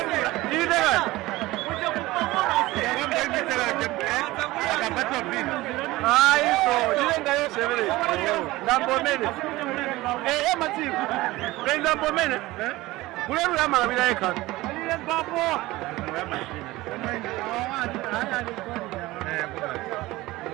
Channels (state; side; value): quieter; left; 19.0 dB